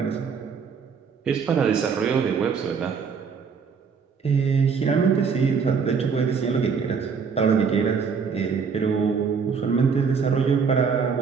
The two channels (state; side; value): quieter; left; 5.9 dB